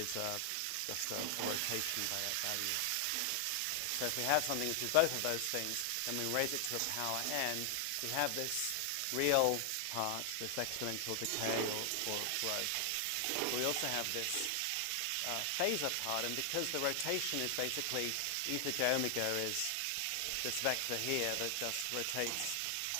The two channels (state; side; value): different; both; correlation 0.00